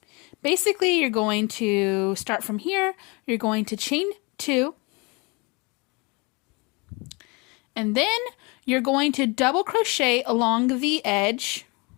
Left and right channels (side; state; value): right; quieter; 28.3 dB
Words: basically you're going to start from here. You're going to chain 2, and then you're going to double crochet along the edge